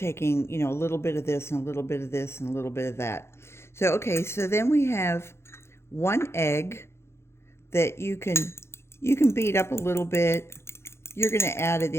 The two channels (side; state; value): right; late; 0.12 ms